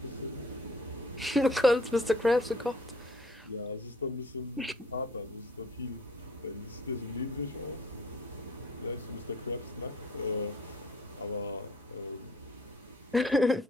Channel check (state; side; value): normal; both; correlation 0.57